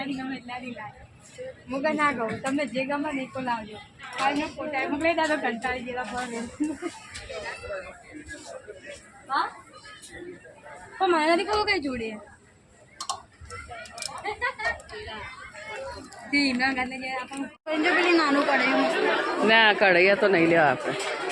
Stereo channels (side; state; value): both; identical; correlation 1.00